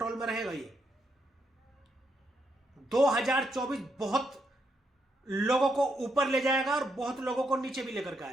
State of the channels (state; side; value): normal; both; correlation 0.79